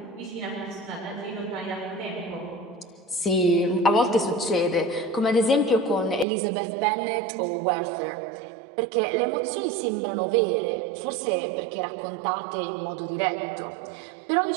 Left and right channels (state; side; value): drops out; left; at 6.2 s